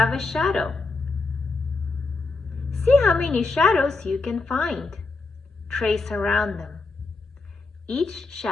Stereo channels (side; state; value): right; quieter; 3.7 dB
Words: a shadow. See how many shadows you can find. Trace around them. Each